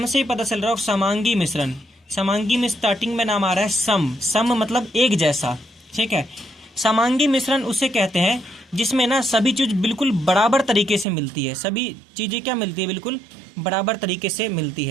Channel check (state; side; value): drops out; left; at 11.1 s